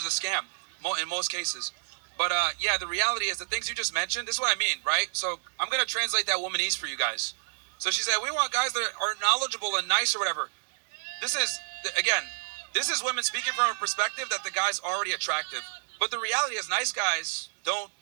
a scam in most cases. But yeah, the reality is the things you just mentioned, this is what I mean, right? So I'm going to translate that womanese for you guys. So she said, we want guys that are knowledgeable and nice or whatever. This is women speaking from a perspective that the guy's already attractive. But the reality is nice guys don't,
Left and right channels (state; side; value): silent; left; digital silence